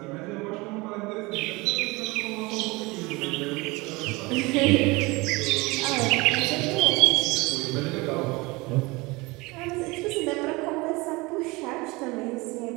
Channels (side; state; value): left; quieter; 23.8 dB